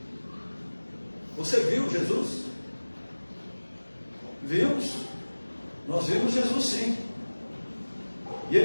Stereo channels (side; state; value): both; inverted; correlation -1.00